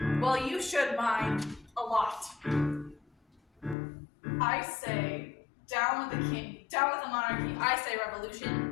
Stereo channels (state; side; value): drops out; right; at 3.8 s